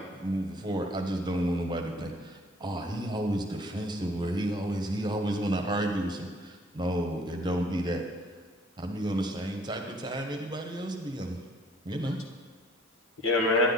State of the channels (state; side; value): normal; both; correlation 0.59